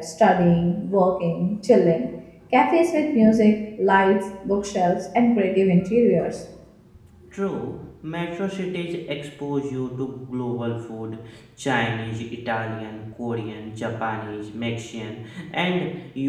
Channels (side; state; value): both; identical; correlation 1.00